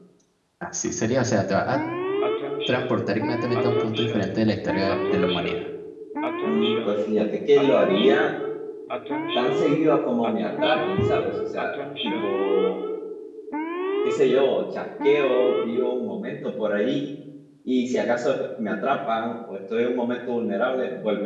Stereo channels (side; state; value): both; identical; correlation 1.00